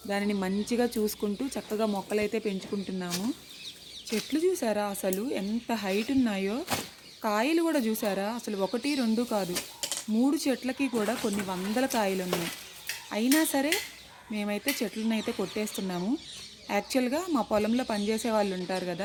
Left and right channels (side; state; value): both; identical; correlation 1.00